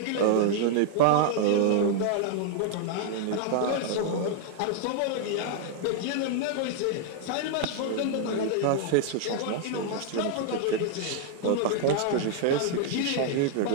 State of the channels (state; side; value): different; both; correlation 0.00